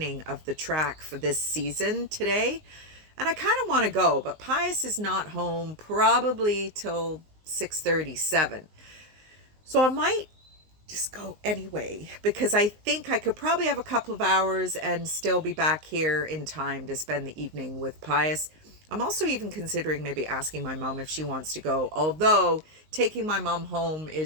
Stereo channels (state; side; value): late; left; 19 ms